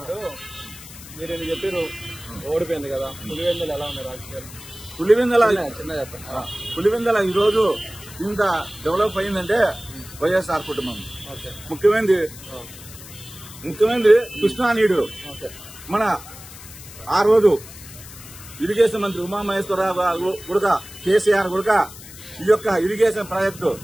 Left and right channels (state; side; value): noise; left; hiss, 16 dB below the sound